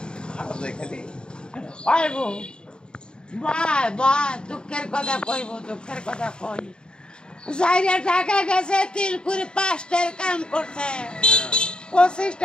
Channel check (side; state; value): right; late; 0.049 ms